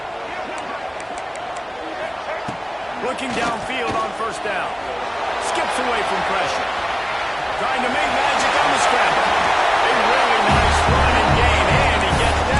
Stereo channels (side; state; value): both; identical; correlation 1.00